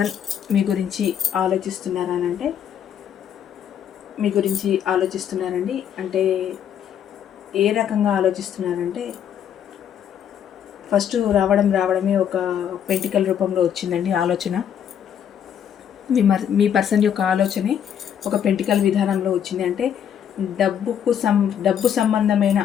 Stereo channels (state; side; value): quieter; right; 9.0 dB